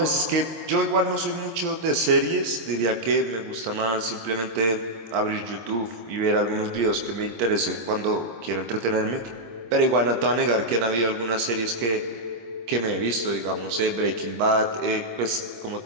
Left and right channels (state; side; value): late; left; 26 ms